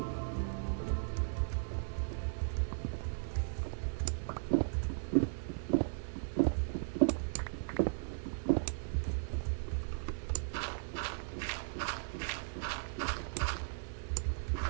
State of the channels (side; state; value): left; silent; 53 dB below the other